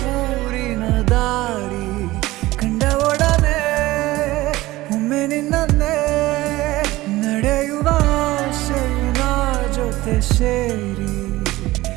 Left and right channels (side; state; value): left; quieter; 18.2 dB